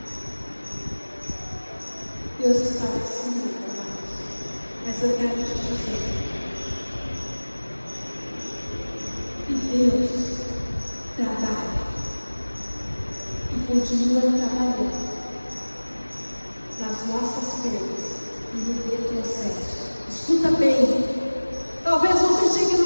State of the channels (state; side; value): inverted; both; correlation -1.00